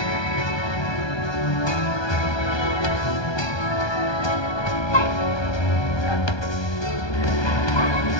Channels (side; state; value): right; late; 1.2 ms